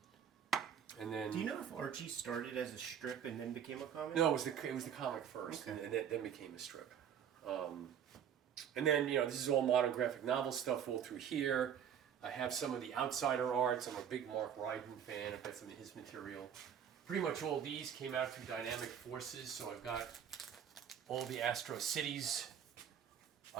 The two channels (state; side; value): quieter; left; 8.7 dB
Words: And then... Do you know if Archie started as a strip and then became a comic? No, it was the comic first, Okay. and then became a strip. And then, this is all modern graphic novel stuff all through here. I have some of the Outsider arts. I'm a big Mark Ryden fan. I've got some of his material. Pretty much all these came out through Dynamic Forces, so I've got all the Astro Cities.